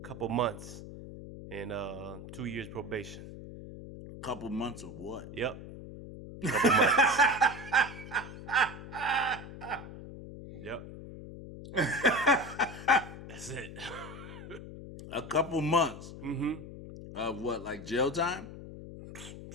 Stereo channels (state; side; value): noise; left; hum, 12 dB below the sound